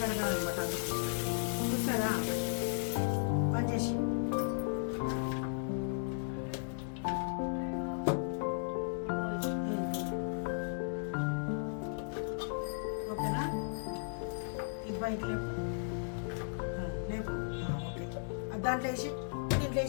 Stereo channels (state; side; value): silent; right; digital silence